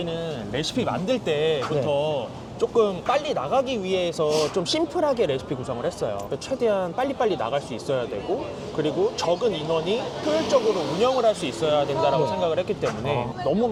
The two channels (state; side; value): identical; both; correlation 1.00